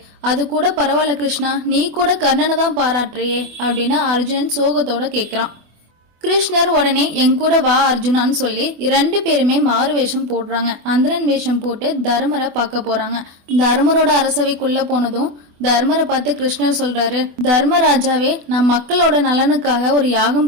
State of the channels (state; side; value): late; left; 24 ms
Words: அது கூட பரவாயில்ல கிருஷ்ணா, நீ கூட கர்ணனை தான் பாராட்டுறியே அப்படின்னு அர்ஜுனன் சோகத்தோட கேக்குறான். கிருஷ்ணர் உடனே என் கூட வா அர்ஜுனான்னு சொல்லி 2 பேருமே மாறு வேஷம் போடுறாங்க. அந்தரன் வேஷம் போட்டு தர்மரை பார்க்க போறாங்க. தர்மரோட அரசவைக்குள்ள போனதும் தர்மரை பார்த்து கிருஷ்ணர் சொல்றாரு, தர்மராஜாவே, நான் மக்களோட நலனுக்காக ஒரு